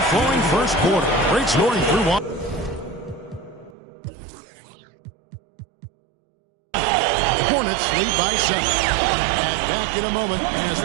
first quarter. Great scoring through one. Hornets lead by 7. And back in a moment as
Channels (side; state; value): left; drops out; at 3.8 s